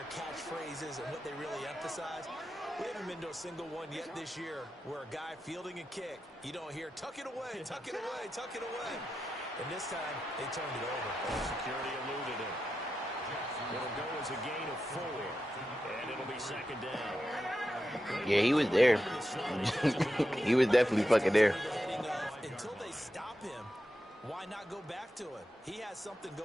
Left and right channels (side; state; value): both; normal; correlation 0.89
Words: catchphrases and what they really emphasize. We haven't been to a single one yet this year where a guy fielding a kick, you don't hear, tuck it away, tuck it away, tuck it away. And this time, they turned it over. Security eluded him. It'll go as a gain of 4. And it'll be 2nd down. Yeah, he was there. He was definitely fucking there. Until they stop him, why not go back to it? He has something